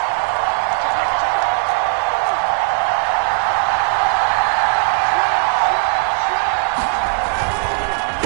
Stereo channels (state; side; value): silent; left; digital silence